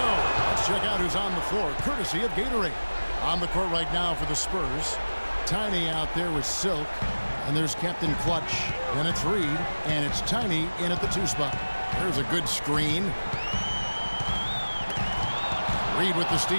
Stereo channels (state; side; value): inverted; both; correlation -1.00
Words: Let's check out who's on the floor, courtesy of Gatorade. On the court right now for the Spurs. Tiny out there with Silk. And there's Captain Clutch. Then it's Reed. And it's Tiny in at the 2 spot. There's a good screen. Reed with the